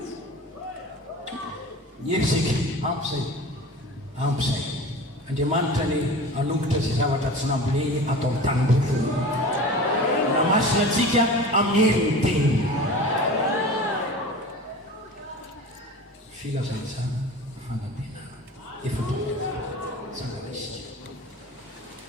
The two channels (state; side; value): normal; both; correlation 0.36